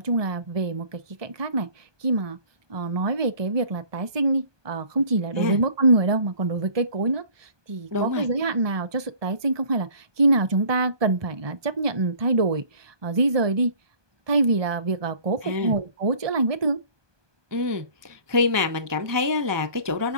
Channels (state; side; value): late; left; 1.2 ms